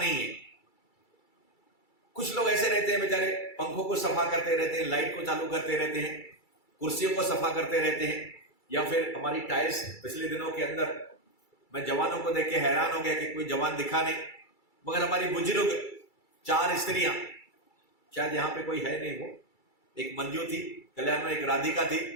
है। कुछ लोग ऐसे रहते हैं बेचारे, पंखों को सफा करते रहते हैं, लाइट को चालू करते रहते हैं, कुर्सियों को सफा करते रहते हैं, या फिर हमारी टाइल्स। पिछले दिनों के अंदर मैं जवानों को देख के हैरान हो गया कि कोई जवान दिखा नहीं, मगर हमारी बुजुर्ग 4 स्त्रियां, शायद यहां पे कोई है नहीं, वो एक मंजू थी कल्याण में, एक राधिका थी,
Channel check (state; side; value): late; right; 2.3 ms